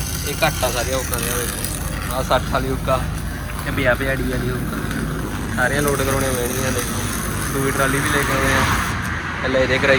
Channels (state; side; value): identical; both; correlation 1.00